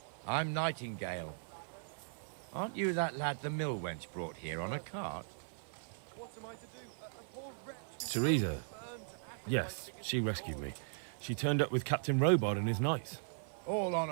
I'm Nightingale. Aren't you that lad the mill wench brought here on a cart? What am I to do? A poor wretch Teresa. Yes, she rescued me. She turned up with Captain Robard and his knights. All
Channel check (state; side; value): silent; left; 52 dB below the other